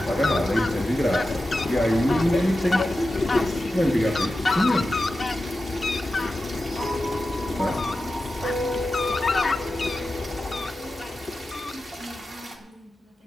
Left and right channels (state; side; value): normal; both; correlation 0.92